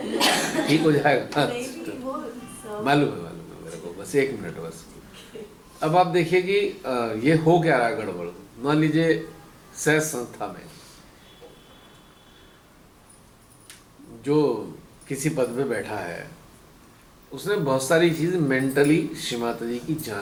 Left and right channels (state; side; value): identical; both; correlation 1.00